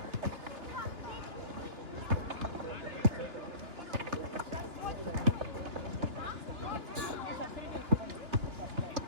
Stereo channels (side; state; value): left; late; 3.2 ms